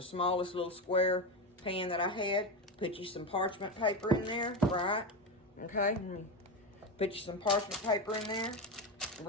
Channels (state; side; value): normal; both; correlation 0.15